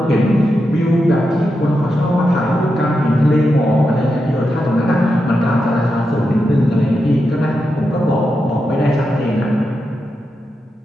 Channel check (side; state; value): both; normal; correlation 0.87